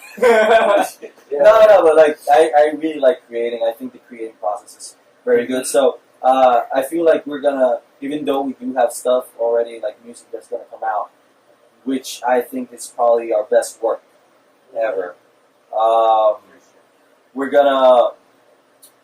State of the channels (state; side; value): identical; both; correlation 1.00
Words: Yeah. No, but like I really like creating. I think the creating process is very good. So I feel like we're gonna, even though we do have stuff already, like music that's gonna come out, which I think is probably our best work ever. We're gonna